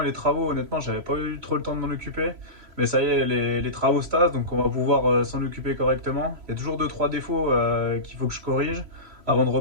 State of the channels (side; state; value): left; late; 3.1 ms